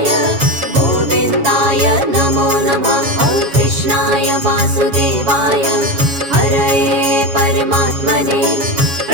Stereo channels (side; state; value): left; late; 7.2 ms